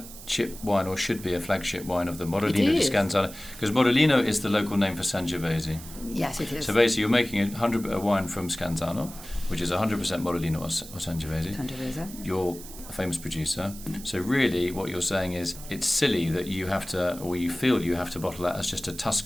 wine, or should be a flagship wine, of the Morellino di Scansano, because Morellino is the local name for Sangiovese. Yes, it is. So basically, you're making a wine from Scansano, which is 100% Morellino or Sangiovese. You're a famous producer. So really, what you're saying is it's silly that you have to, or you feel you have to bottle that as just a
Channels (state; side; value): noise; right; hiss, 15 dB below the sound